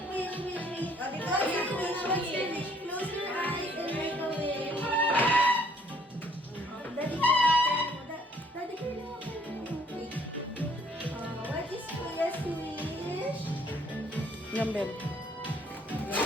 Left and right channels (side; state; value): both; normal; correlation 0.62